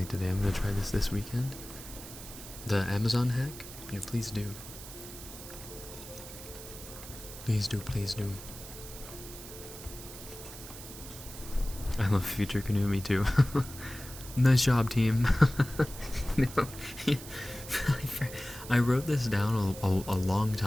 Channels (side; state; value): right; noise; hiss, 13 dB below the sound